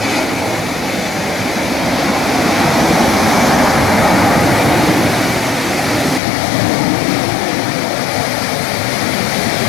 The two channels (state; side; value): drops out; right; at 6.2 s